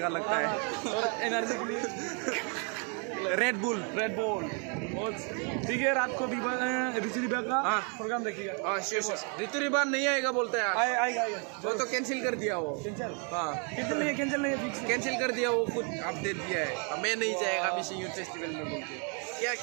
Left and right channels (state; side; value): quieter; left; 37.7 dB